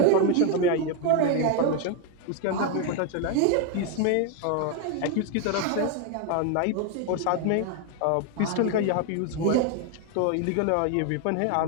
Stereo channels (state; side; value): different; both; correlation 0.01